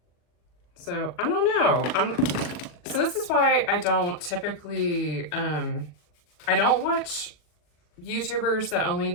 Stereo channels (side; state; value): right; late; 40 ms